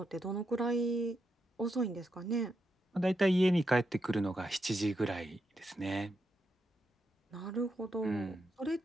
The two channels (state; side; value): normal; both; correlation 0.84